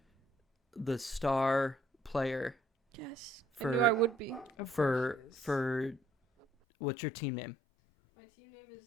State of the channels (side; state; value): right; drops out; at 6.5 s